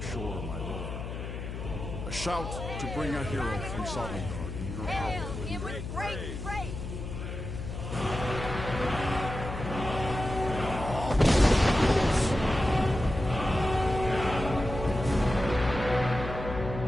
shore, my lord. A shout to bring a hero from Sovngarde in your Hail power. him with great praise!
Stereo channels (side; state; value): left; noise; hum, 7 dB below the sound